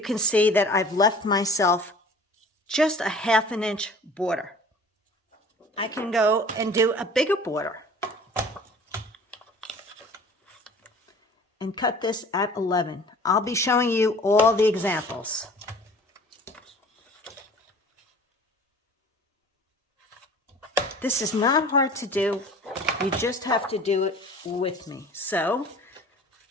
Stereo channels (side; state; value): both; normal; correlation 0.46